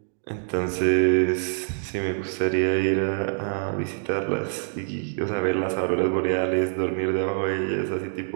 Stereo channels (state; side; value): silent; left; digital silence